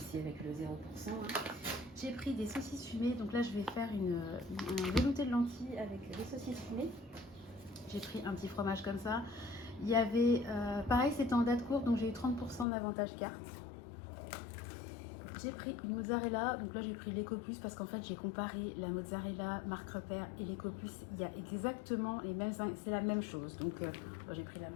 avec le 0%. Hein. J'ai pris des saucisses fumées, donc là je vais faire un velouté de lentilles avec des saucisses fumées. J'ai pris un petit fromage comme ça. Il y avait, pareil, c'était en date courte, donc j'ai eu 30% d'avantage carte. J'ai pris une mozzarella, donc là j'ai pris l'Ecopus parce qu'en fait j'ai comparé la mozzarella marque repère et l'Ecopus. Il y a exactement les mêmes, c'est la même chose, donc bon, j'ai pris la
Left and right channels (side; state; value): right; drops out; at 12.7 s